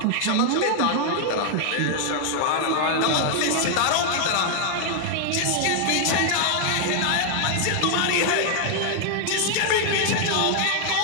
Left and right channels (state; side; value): different; both; correlation 0.00